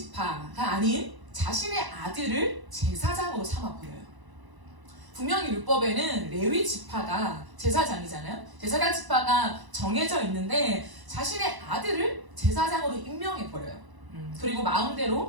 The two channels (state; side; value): late; left; 1.0 ms